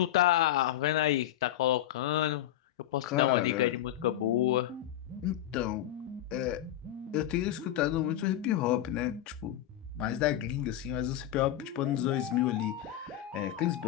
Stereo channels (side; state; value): right; quieter; 12.4 dB